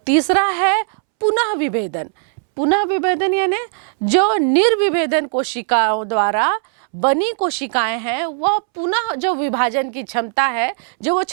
है पुनः विभेदन। पुनः विभेदन यानी जो निर्विभेदन कोशिकाओं द्वारा बनी कोशिकाएं हैं वह पुनः जो विभाजन की क्षमता है, जो वो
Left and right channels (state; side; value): silent; left; 67 dB below the other